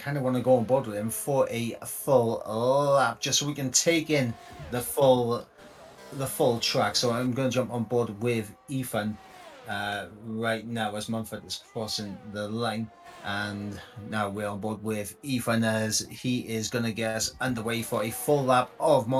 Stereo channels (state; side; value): identical; both; correlation 1.00